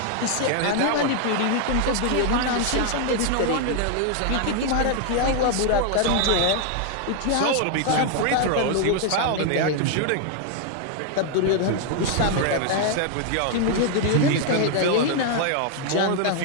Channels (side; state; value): both; different; correlation 0.00